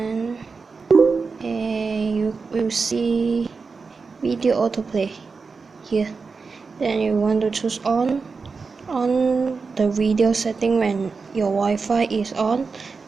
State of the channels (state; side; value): quieter; left; 4.7 dB